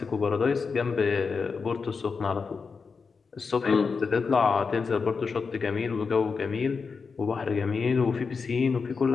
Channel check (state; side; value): quieter; right; 5.1 dB